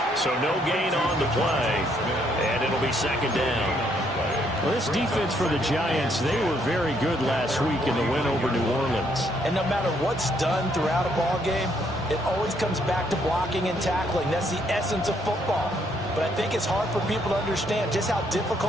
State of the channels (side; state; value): both; normal; correlation 0.71